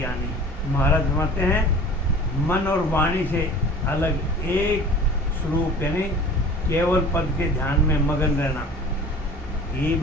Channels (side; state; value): both; normal; correlation 0.43